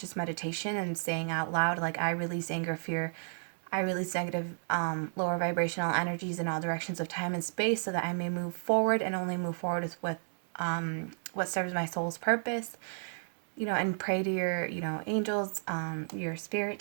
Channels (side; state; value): left; silent; digital silence